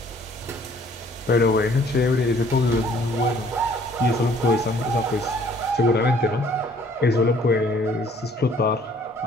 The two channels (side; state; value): both; normal; correlation 0.58